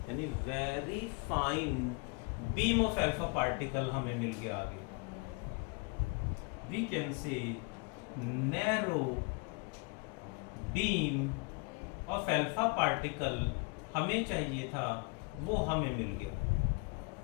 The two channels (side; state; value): right; quieter; 30.4 dB